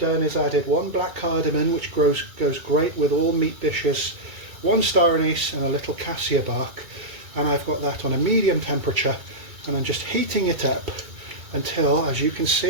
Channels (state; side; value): late; left; 2.3 ms